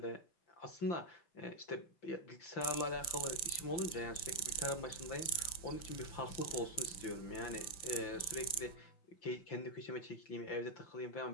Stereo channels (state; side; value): late; right; 5.9 ms